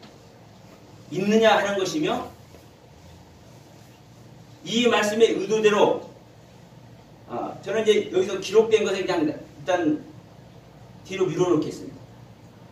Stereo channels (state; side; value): identical; both; correlation 1.00